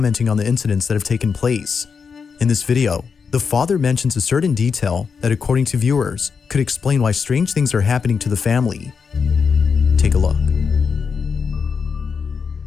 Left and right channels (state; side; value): quieter; right; 5.8 dB